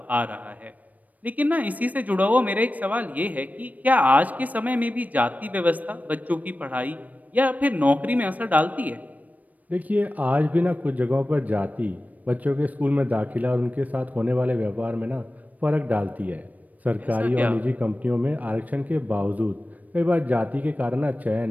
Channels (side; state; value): left; late; 0.075 ms